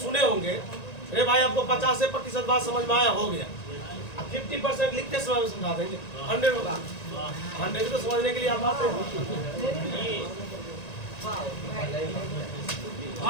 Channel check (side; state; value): right; late; 1.9 ms